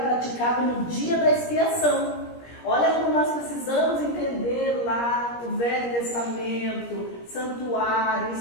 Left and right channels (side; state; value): right; late; 17 ms